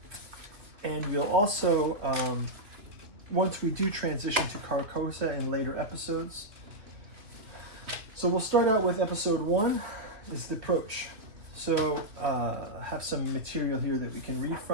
And we'll also, once we do transition to Carcosa in later episodes. So we'll start out with episode 1, is the approach. So have some material here that we can read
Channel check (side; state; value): left; late; 3.0 ms